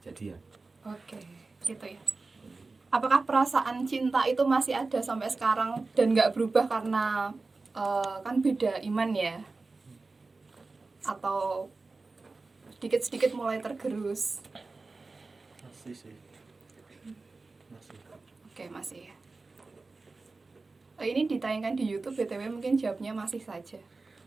jadian. Oke, gitu ya. Apakah perasaan cinta itu masih ada sampai sekarang dan nggak berubah karena kan beda iman ya? Atau sedikit-sedikit mulai tergerus? Masih sih. Masih. Oke, masih ya. Ini ditayangkan di YouTube, BTW mungkin jawabnya masih saja.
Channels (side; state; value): left; quieter; 3.7 dB